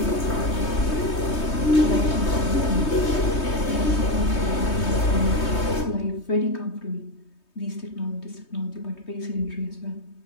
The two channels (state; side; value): late; right; 3.2 ms